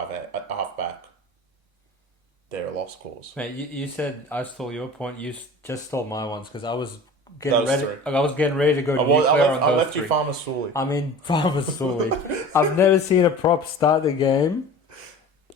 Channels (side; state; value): both; normal; correlation 0.39